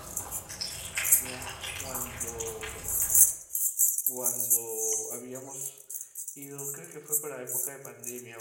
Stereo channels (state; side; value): identical; both; correlation 1.00